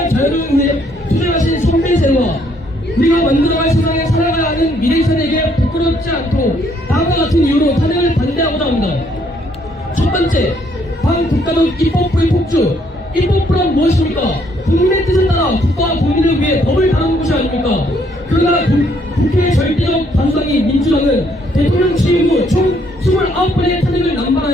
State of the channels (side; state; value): both; normal; correlation 0.68